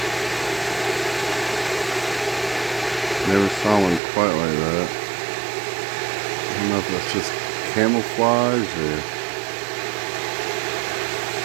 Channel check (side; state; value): left; drops out; at 4.0 s